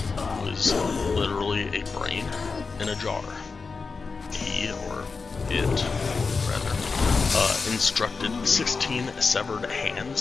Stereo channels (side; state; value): right; quieter; 4.6 dB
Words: who was literally a brain in a jar. He, or it, rather, instructed 16 severed